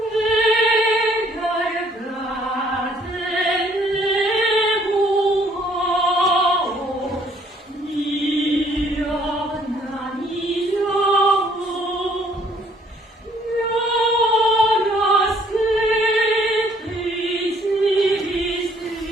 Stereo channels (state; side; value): normal; both; correlation 0.62